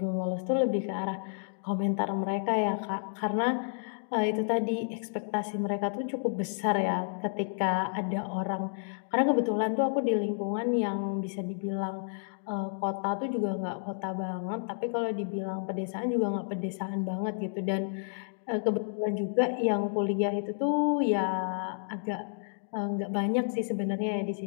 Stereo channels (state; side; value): silent; right; digital silence